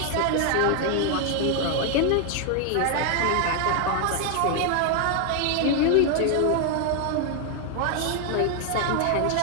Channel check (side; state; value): both; different; correlation 0.00